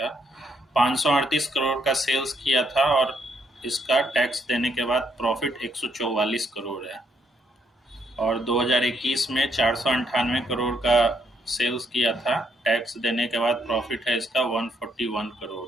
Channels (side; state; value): both; normal; correlation 0.73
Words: 538 करोड़ का सेल्स किया था और इसका टैक्स देने के बाद प्रॉफिट 144 करोड़ है। और 2021 में 498 करोड़ का सेल्स किया था, टैक्स देने के बाद प्रॉफिट है इसका 141